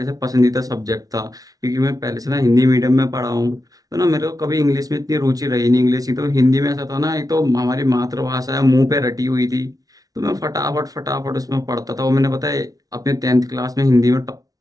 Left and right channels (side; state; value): left; late; 0.18 ms